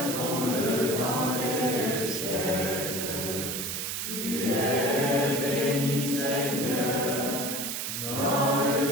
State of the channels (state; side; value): noise; right; hiss, 3 dB below the sound